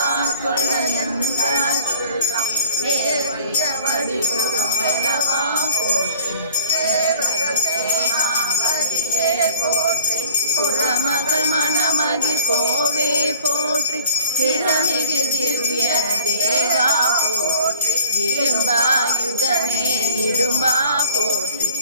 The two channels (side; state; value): both; inverted; correlation -0.55